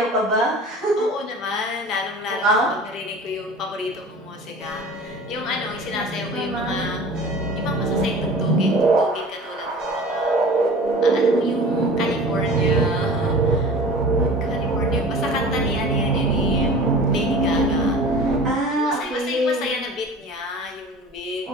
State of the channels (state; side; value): normal; both; correlation 0.40